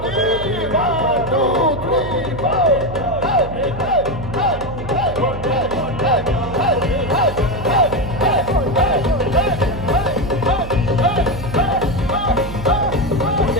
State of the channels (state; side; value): noise; right; hum, 10 dB below the sound